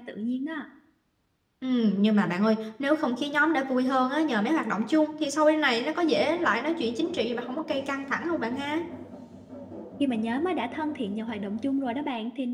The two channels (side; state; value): both; identical; correlation 1.00